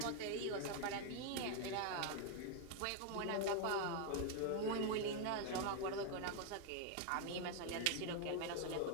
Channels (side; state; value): both; different; correlation 0.00